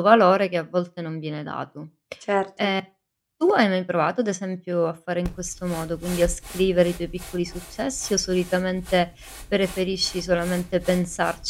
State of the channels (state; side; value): identical; both; correlation 1.00